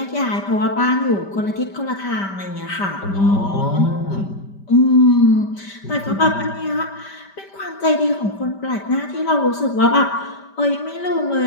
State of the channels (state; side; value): late; right; 5.1 ms